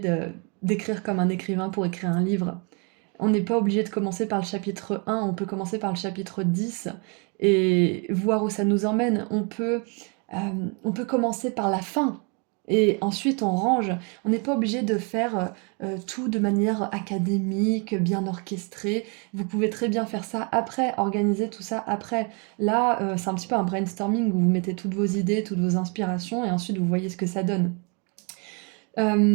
d'écrire comme un écrivain pour écrire un livre. On n'est pas obligé de commencer par le chapitre 1, on peut commencer par le chapitre 10 et voir où ça nous emmène. On peut commencer par la fin et ensuite on range. On n'est pas obligé de faire tout de manière académique, bien orchestrée. Vous pouvez très bien faire ça après, organiser tout ça après. Là, c'est un petit peu un brainstorming où vous mettez toutes vos idées, toutes vos inspirations et ensuite vous voyez ce que ça donne. Ça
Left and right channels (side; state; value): left; quieter; 34.4 dB